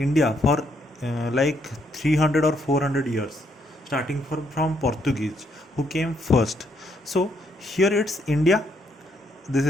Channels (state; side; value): normal; both; correlation 0.73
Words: for like 300 or 400 years, starting from Portuguese who came first. So here it's India.